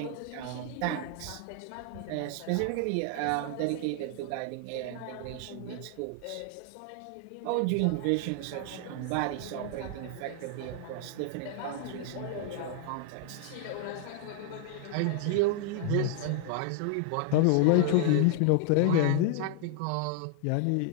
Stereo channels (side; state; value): both; different; correlation 0.00